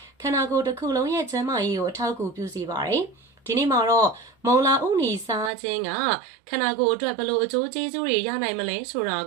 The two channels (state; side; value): drops out; left; at 5.5 s